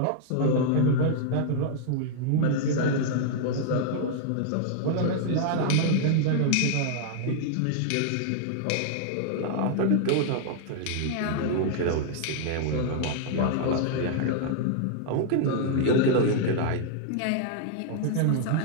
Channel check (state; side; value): different; both; correlation -0.01